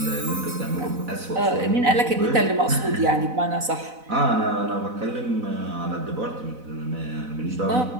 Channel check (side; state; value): left; late; 4.0 ms